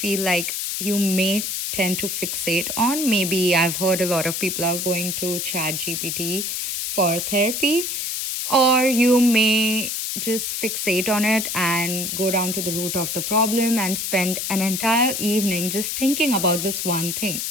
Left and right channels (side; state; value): left; noise; hiss, 2 dB below the sound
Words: like you may tend to fixate on, maybe I've heard a lot of people are going to ChatGPT for therapy, or you may just fixate on it and go down to the root of the problem and spend an entire evening just thinking about this one thing.